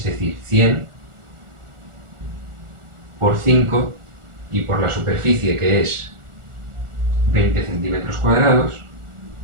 decir, 100 por 5 y por la superficie, que es 20 centímetros cuadrados.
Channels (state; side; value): late; left; 1.4 ms